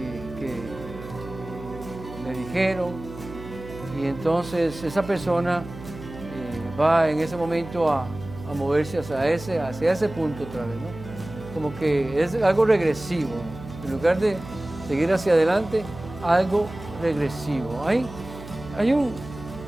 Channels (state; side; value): noise; right; hum, 14 dB below the sound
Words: le dijeron, y entonces esa persona va en ese momento a moverse hacia ese punto otra vez, ¿no? Como que es algo regresivo, en lugar de seguir hacia adelante, algo regresivo. Hay un